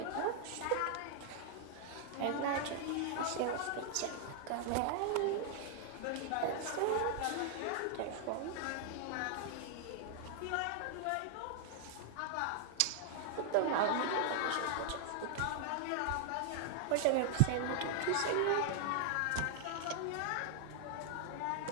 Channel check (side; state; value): both; different; correlation 0.00